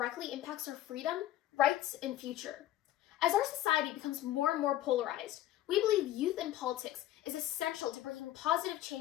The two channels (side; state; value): right; quieter; 13.6 dB